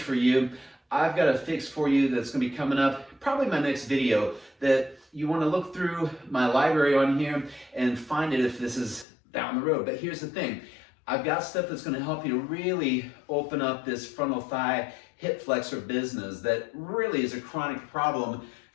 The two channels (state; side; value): drops out; right; at 9.1 s